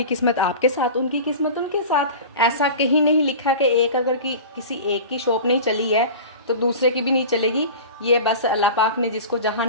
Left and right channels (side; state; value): both; inverted; correlation -0.34